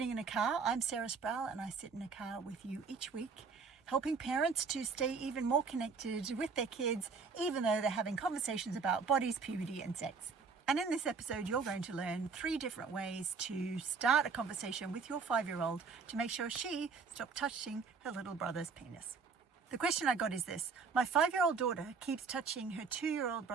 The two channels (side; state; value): left; quieter; 5.2 dB